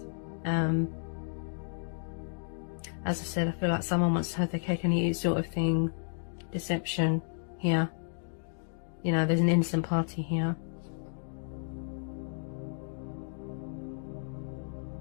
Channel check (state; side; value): silent; right; digital silence